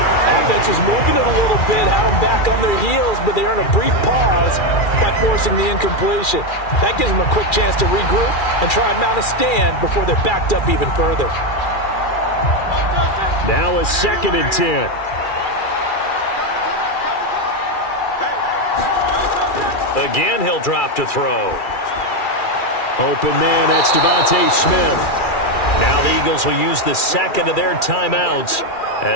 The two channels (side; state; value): right; late; 2.4 ms